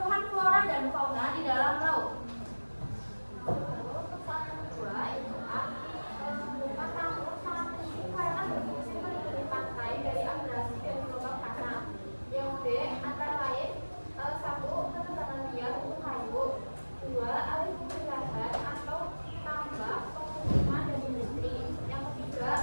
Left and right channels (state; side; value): inverted; both; correlation -1.00